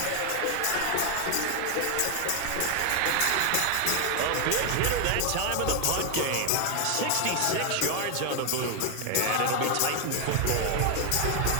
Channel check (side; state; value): both; different; correlation 0.00